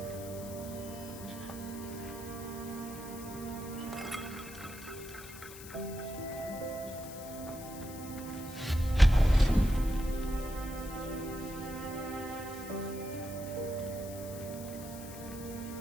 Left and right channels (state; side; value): noise; left; hiss, 14 dB below the sound